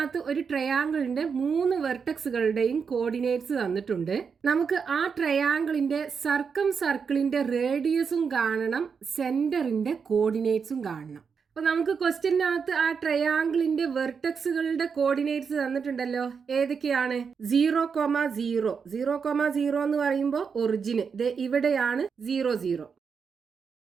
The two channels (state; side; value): quieter; left; 6.0 dB